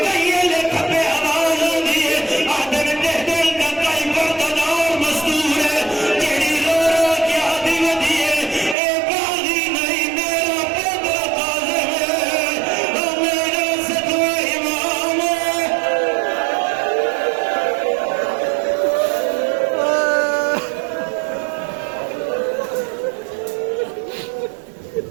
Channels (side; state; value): left; drops out; at 8.8 s